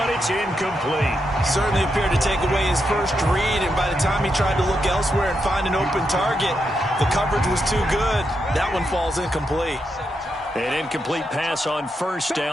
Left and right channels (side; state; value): both; normal; correlation 0.83